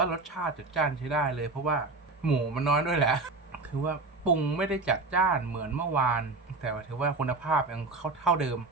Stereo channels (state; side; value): quieter; left; 3.5 dB